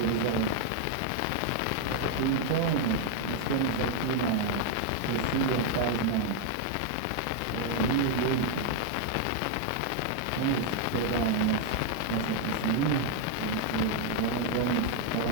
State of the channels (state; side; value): different; both; correlation 0.00